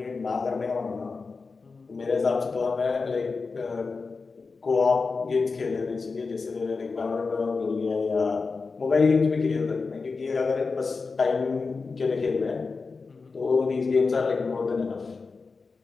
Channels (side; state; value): right; quieter; 4.4 dB